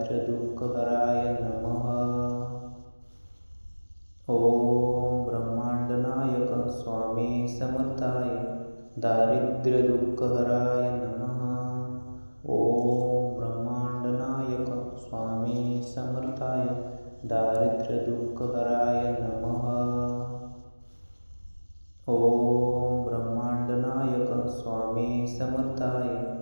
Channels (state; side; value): inverted; both; correlation -1.00